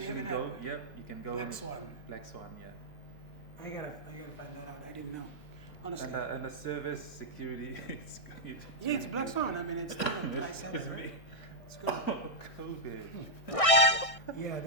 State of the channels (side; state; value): right; late; 1.6 ms